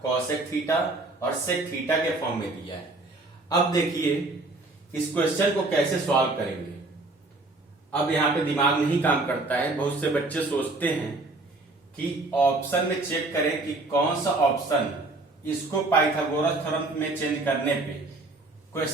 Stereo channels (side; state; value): left; quieter; 3.1 dB